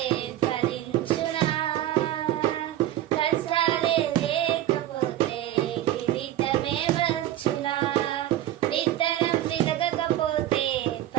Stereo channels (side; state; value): left; quieter; 13.2 dB